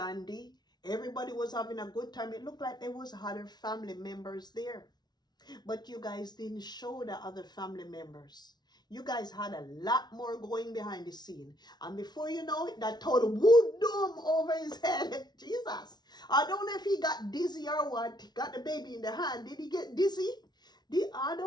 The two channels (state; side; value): late; right; 0.20 ms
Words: Everybody was having a good time. It looked like there was other family members there. But you guys didn't show the other family members. You guys had a lot more going behind the scene. And before you know it, that total wood dome over his head. Jesus. I don't know if he got dizzy or what. He got the baby in the hand. Did he get dizzy? I